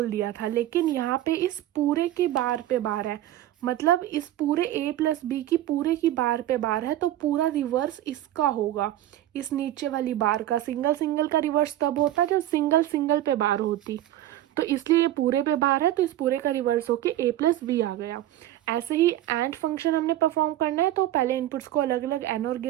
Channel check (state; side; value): quieter; left; 13.4 dB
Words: दिया था। लेकिन यहाँ पे इस पूरे की बार पे बार है, मतलब इस पूरे a प्लस बी की पूरे की बार पे बार है, तो पूरा रिवर्स इसका होगा, इस नीचे वाली बार का। सिंगल सिंगल का रिवर्स तब होता जब सिंगल सिंगल पे बार होती, तो इसलिए ये पूरे पे बार है तो इस पूरे का रिवर्स होके a प्लस बी आ गया। ऐसे ही एंड फंक्शन हमने परफॉर्म करना है तो पहले इनपुट्स को अलग अलग एनोर